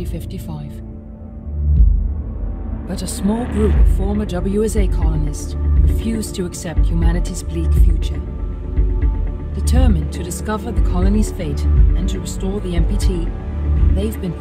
But a small group of former WSA colonists refused to accept humanity's bleak future. Determined to discover the colony's fate and to restore the MPT, they've been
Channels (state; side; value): identical; both; correlation 1.00